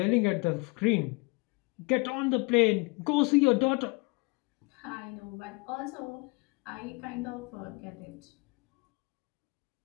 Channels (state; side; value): quieter; right; 27.9 dB